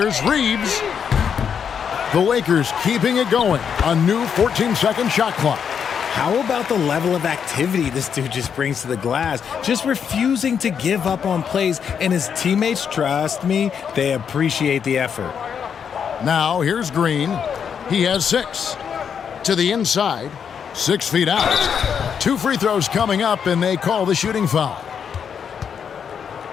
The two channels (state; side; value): quieter; right; 7.3 dB